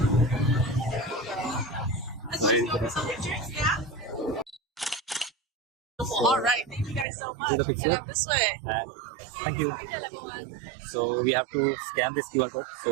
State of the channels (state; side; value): drops out; left; at 7.1 s